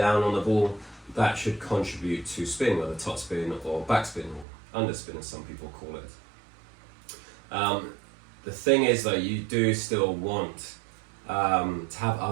on the ball, that should contribute to spin, whether top spin or backspin or underspin, as some people call it. The thing is, though, you do still want to have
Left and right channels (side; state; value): left; drops out; at 4.5 s